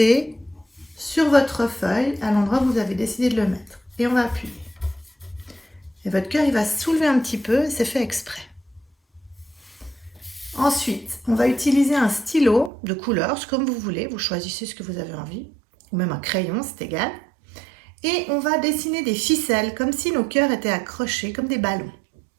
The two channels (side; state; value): left; drops out; at 12.7 s